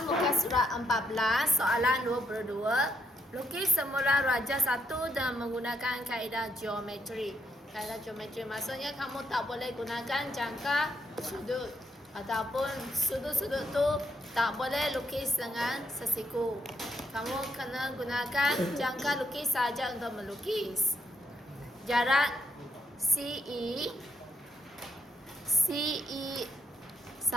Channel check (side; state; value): both; normal; correlation 0.75